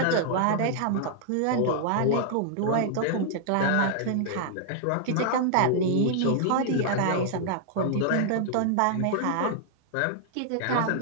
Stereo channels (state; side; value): different; both; correlation -0.01